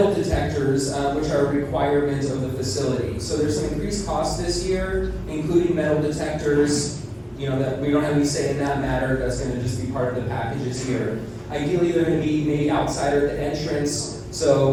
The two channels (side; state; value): both; identical; correlation 1.00